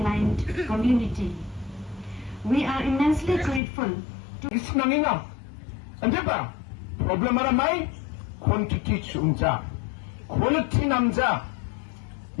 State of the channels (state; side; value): drops out; right; at 3.6 s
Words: community. We are immensely grateful to Isnangina. Ande ba? Problema ramai quantity chunja. Quality namja.